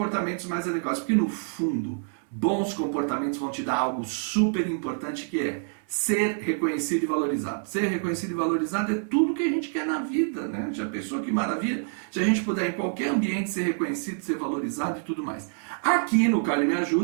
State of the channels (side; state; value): left; silent; digital silence